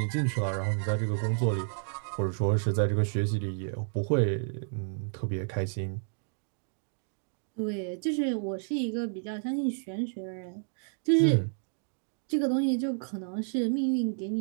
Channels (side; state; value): left; silent; digital silence